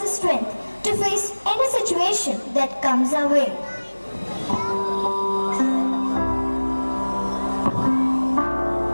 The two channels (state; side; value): inverted; both; correlation -1.00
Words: strength to face any situation that comes our way.